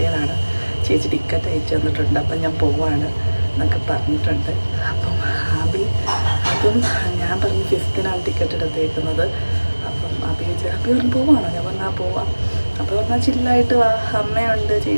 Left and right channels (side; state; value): both; inverted; correlation -1.00